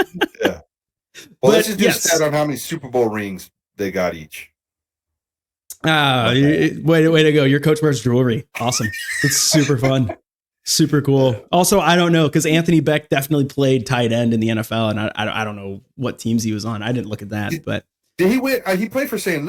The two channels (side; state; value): both; identical; correlation 1.00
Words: Well, let's just do a stat on how many Super Bowl rings they got each. Way to go. Your coach wears jewelry. Awesome. It's super fun. Super cool. Also, I don't know, because Anthony Beck definitely played tight end in the NFL, and I don't know what teams he was on. I didn't look at that, but did he win? He played for St.